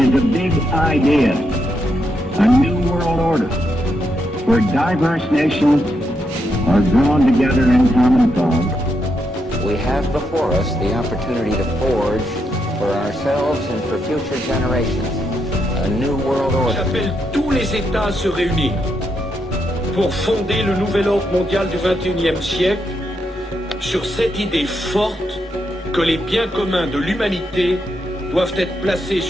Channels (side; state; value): both; normal; correlation 0.81